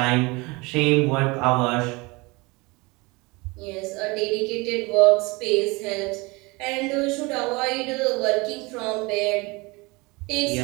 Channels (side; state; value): left; quieter; 25.3 dB